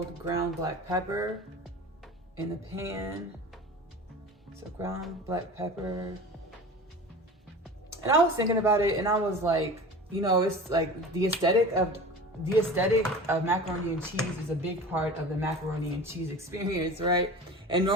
ground black pepper in the pan. So ground black pepper. And I was thinking about it and I was like, you know, it's like the aesthetic of macaroni and cheese is a big part of the macaroni and cheese experience, right? And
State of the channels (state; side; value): normal; both; correlation 0.36